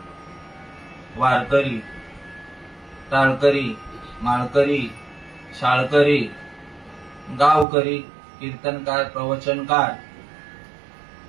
वारकरी टाळकरी माळकरी शाळकरी गावकरी कीर्तनकार प्रवचनकार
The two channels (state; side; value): drops out; left; at 7.7 s